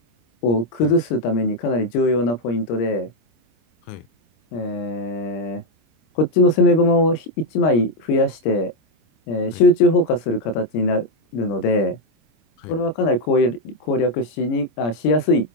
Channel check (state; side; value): late; right; 26 ms